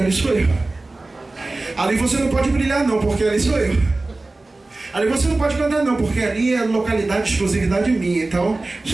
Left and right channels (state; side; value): quieter; left; 3.1 dB